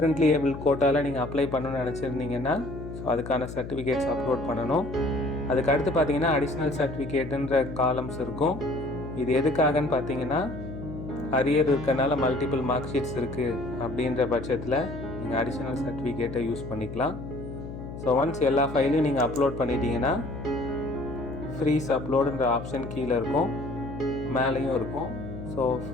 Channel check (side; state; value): left; noise; hum, 10 dB below the sound